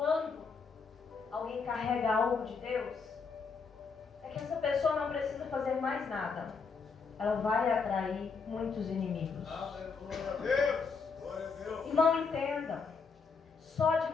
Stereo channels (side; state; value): right; quieter; 5.1 dB